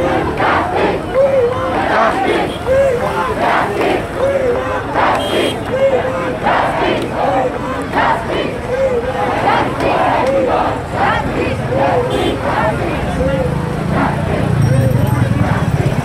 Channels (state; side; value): identical; both; correlation 1.00